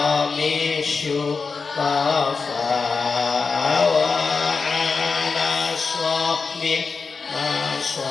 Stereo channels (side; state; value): right; quieter; 4.8 dB